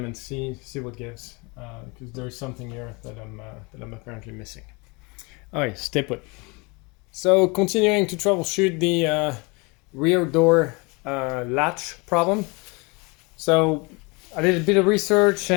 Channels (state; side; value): quieter; right; 28.3 dB